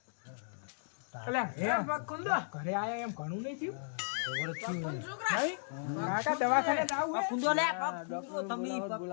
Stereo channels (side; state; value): right; silent; 54 dB below the other